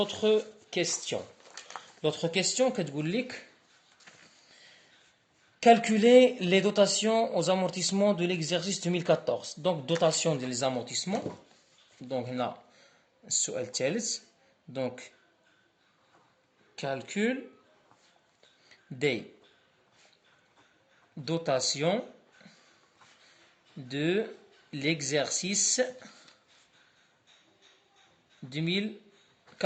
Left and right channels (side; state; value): both; identical; correlation 1.00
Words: كيستيون. لوطخ كيستيون كتقول لك calculer les dotations aux amortissements de l'exercice 2014. Donc dotation des amortissements. Donc هنا السؤال الثالث. Donc calcul des dotations de l'exercice